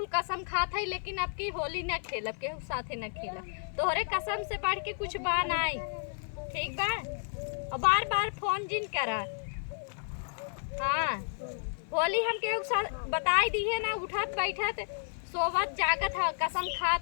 कसम खात है, लेकिन आपकी होली न खेलब, केहू साथे न खेलब। तोहरे कसम से बढ़ के कुछ बा नहीं, ठीक बा। और बार बार फोन जिन करा। हाँ, होली हम केहू साथ बताई दी है ना, उठत बैठत सोवत जागत है, कसम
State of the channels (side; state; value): right; silent; 56 dB below the other